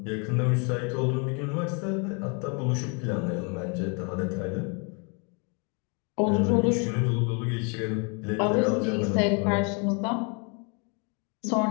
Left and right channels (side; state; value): right; quieter; 34.9 dB